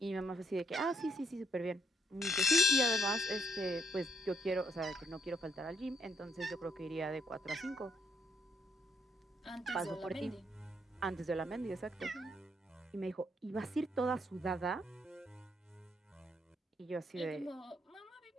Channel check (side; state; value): both; normal; correlation 0.69